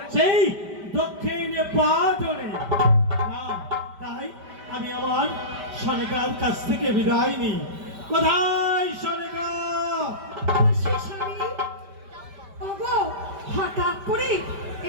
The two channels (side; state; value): left; late; 5.1 ms